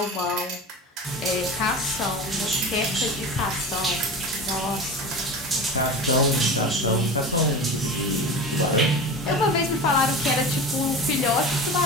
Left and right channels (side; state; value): both; normal; correlation 0.30